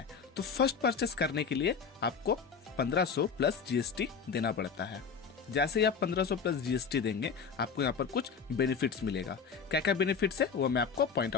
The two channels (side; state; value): right; quieter; 6.0 dB